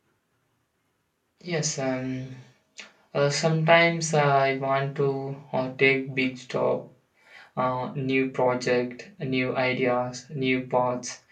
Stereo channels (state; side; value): identical; both; correlation 1.00